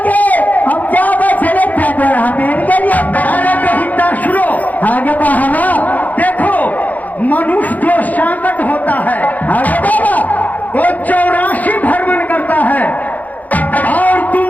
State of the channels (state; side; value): late; right; 0.079 ms